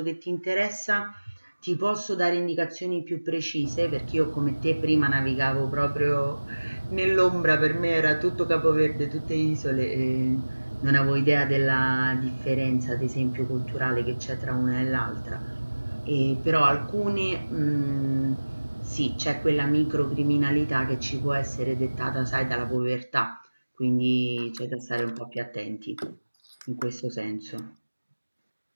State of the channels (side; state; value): both; inverted; correlation -1.00